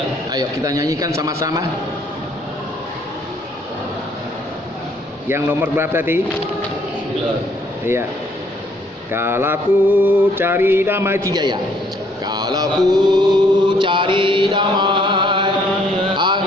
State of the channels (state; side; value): normal; both; correlation 0.65